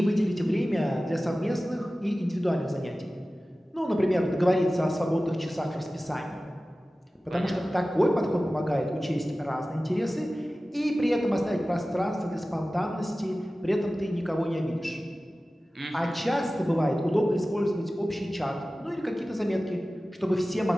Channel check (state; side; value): normal; both; correlation 0.96